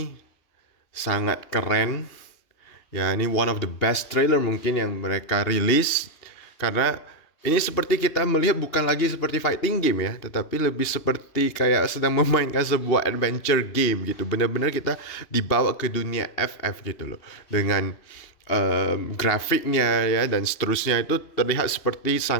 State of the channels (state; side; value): late; right; 2.7 ms